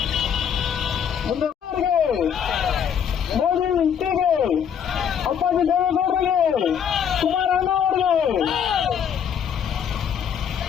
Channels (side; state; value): right; quieter; 8.1 dB